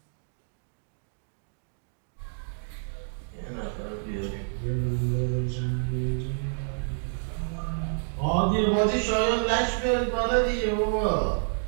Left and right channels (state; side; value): silent; left; digital silence